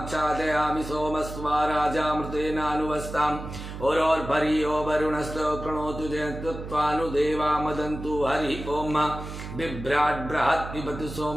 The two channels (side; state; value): right; noise; hum, 9 dB below the sound